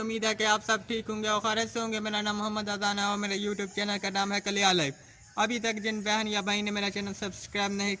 है कि आप सब ठीक होंगे और खैरियत से होंगे। मेरा नाम मोहम्मद अजान है और मेरे यूट्यूब चैनल का नाम है कलिया लाइव। अभी तक जिन बहन या भाई ने मेरा चैनल सब्सक्राइब नहीं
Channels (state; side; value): identical; both; correlation 1.00